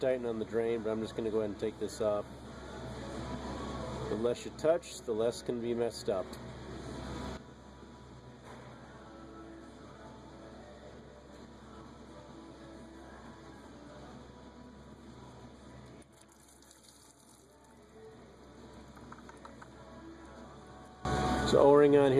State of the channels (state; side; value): identical; both; correlation 1.00